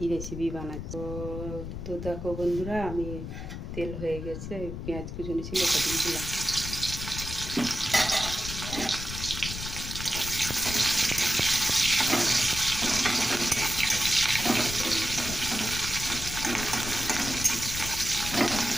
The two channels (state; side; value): noise; left; rumble, 7 dB below the sound